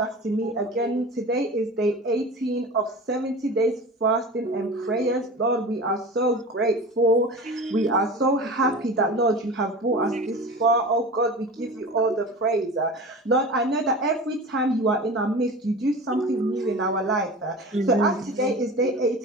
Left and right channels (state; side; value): normal; both; correlation 0.34